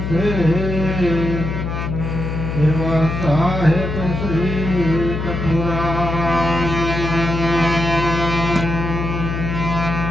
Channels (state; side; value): noise; left; hum, 3 dB below the sound